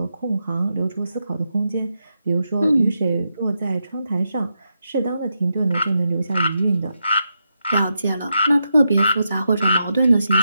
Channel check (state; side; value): inverted; both; correlation -0.85